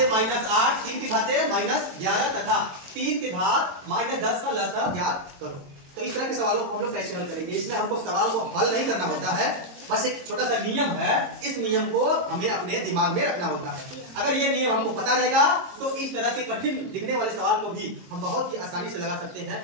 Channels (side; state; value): left; late; 22 ms